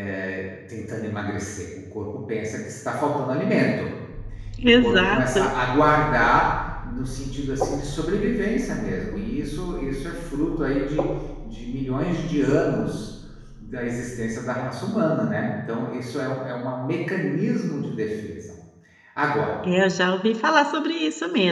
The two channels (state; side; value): identical; both; correlation 1.00